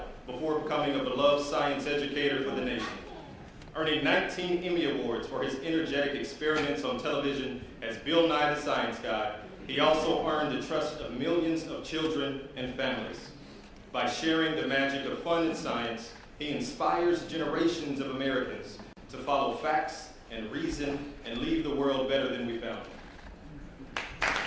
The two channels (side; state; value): both; identical; correlation 1.00